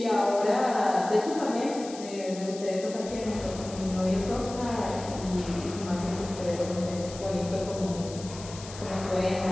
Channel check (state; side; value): noise; left; hiss, 14 dB below the sound